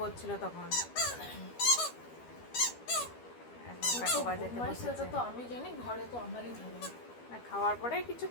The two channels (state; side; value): late; right; 12 ms